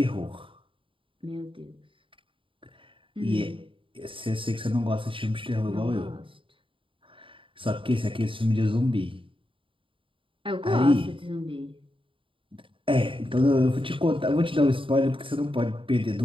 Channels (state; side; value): late; left; 0.25 ms